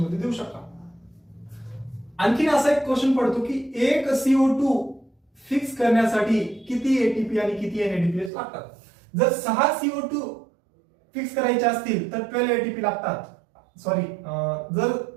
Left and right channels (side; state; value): left; drops out; at 8.3 s